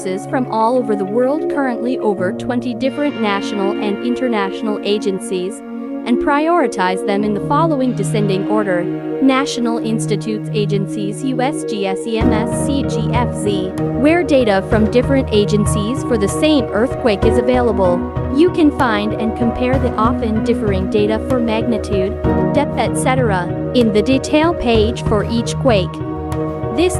from all over the world, currently over 20 different national and international agencies, and prioritize them in the following descending order: National Institutes Agencies, USGS, EMS, CGFZ, where data from different agencies for the same earthquake is available. You can find and compare the often differing data for magnitude, depth, etc. in the detail page for each quake. This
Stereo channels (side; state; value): both; identical; correlation 1.00